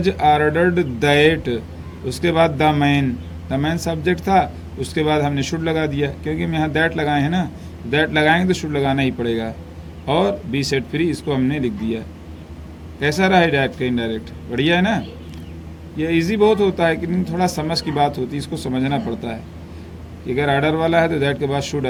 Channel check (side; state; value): both; identical; correlation 1.00